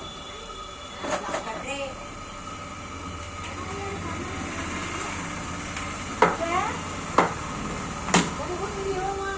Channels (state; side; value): identical; both; correlation 1.00